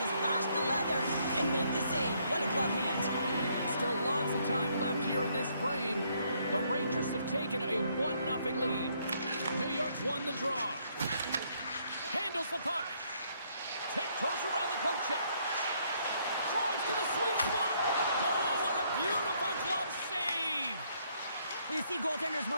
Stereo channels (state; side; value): inverted; both; correlation -0.70